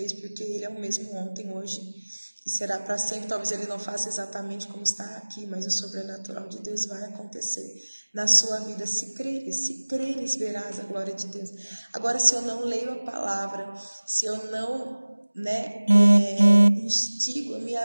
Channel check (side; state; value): both; inverted; correlation -1.00